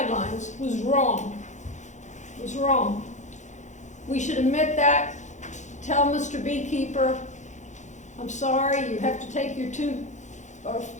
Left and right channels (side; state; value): right; late; 0.35 ms